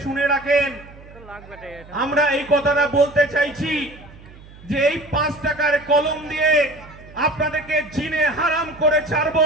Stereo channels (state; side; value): noise; right; hum, 20 dB below the sound